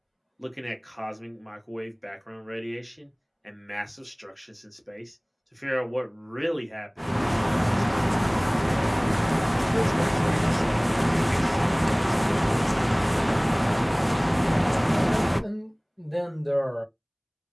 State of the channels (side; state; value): both; identical; correlation 1.00